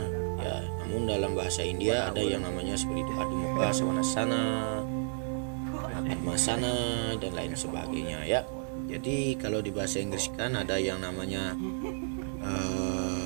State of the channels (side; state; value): left; silent; 57 dB below the other